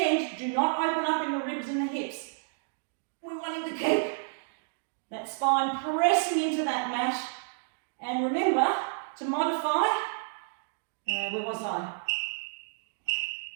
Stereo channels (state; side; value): silent; left; digital silence